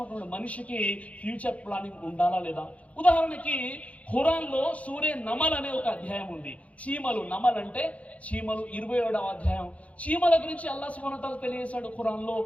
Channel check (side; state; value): right; late; 0.066 ms